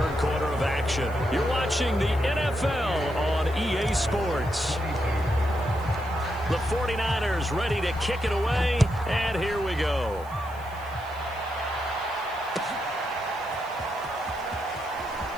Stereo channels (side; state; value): right; noise; hiss, 24 dB below the sound